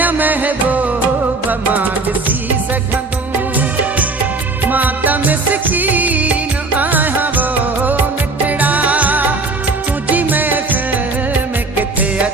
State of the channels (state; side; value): quieter; left; 3.5 dB